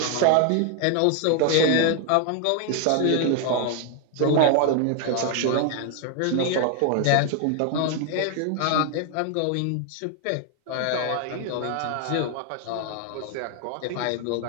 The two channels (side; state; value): both; different; correlation 0.00